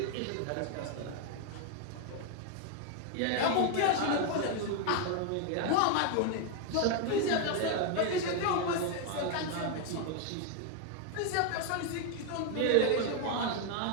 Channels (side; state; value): both; different; correlation 0.00